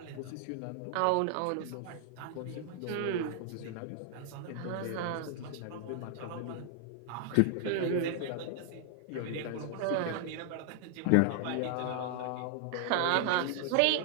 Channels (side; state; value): both; different; correlation 0.00